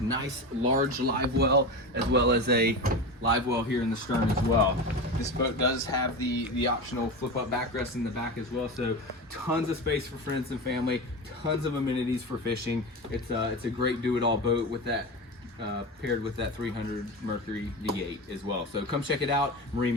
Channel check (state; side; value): normal; both; correlation 0.24